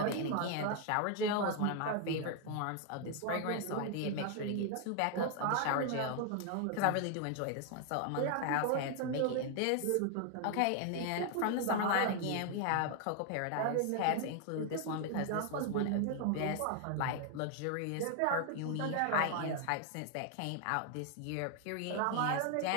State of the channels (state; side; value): different; both; correlation 0.00